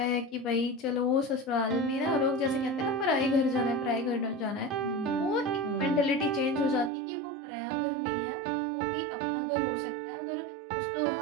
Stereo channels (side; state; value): left; drops out; at 6.9 s